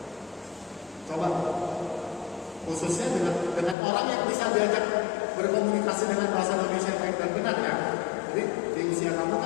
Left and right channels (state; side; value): drops out; right; at 3.8 s